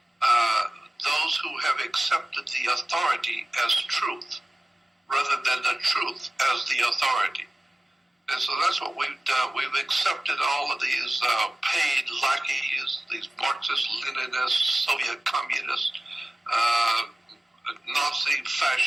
those who have accepted the authority as truth, rather than the truth as the authority. And so that's what we've done. We've accepted all of these paid lackeys, these Marxist, Leninists, Soviet communists, Nazi,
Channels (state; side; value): normal; both; correlation 0.97